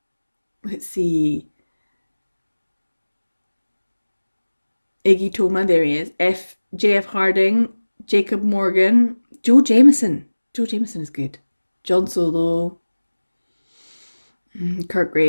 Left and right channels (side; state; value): both; inverted; correlation -1.00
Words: let's see. Iggy Toma, there he is. J.F. Harding, Jacob Morgan, Joe Jameson. Joe Jameson is good. John Solo, Kurt